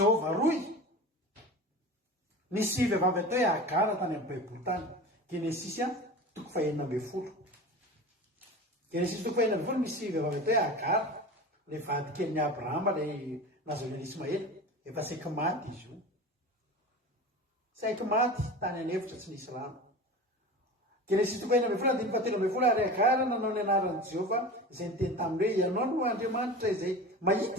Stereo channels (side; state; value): both; normal; correlation 0.33